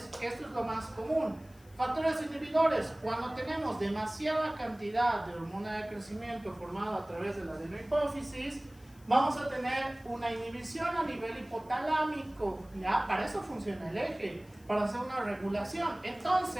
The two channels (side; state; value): left; noise; hiss, 28 dB below the sound